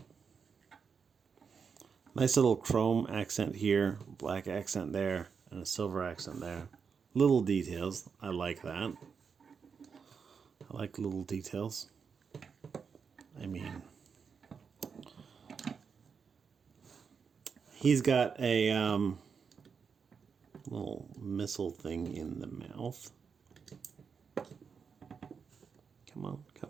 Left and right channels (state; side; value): quieter; left; 6.0 dB